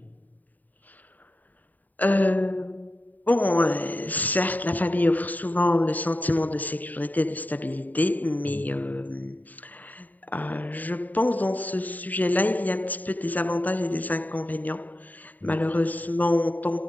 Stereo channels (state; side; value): late; right; 0.082 ms